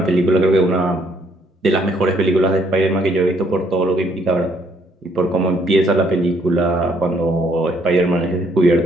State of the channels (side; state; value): both; normal; correlation 0.67